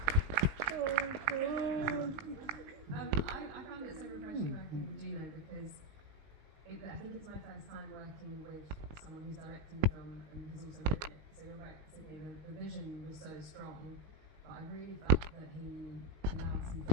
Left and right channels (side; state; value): left; late; 19 ms